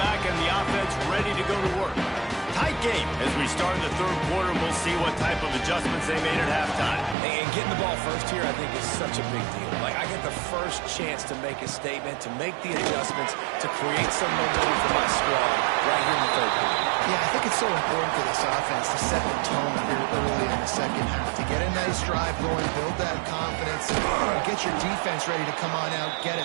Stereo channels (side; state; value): left; drops out; at 7.2 s